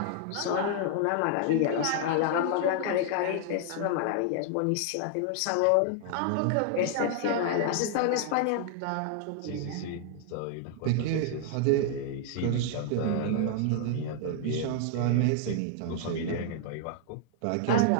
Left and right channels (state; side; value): different; both; correlation 0.00